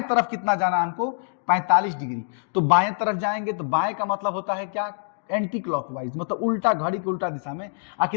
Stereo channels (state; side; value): silent; right; 62 dB below the other